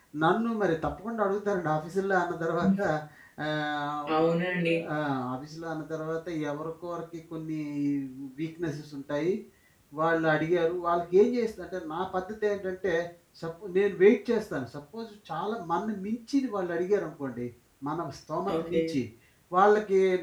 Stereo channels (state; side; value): identical; both; correlation 1.00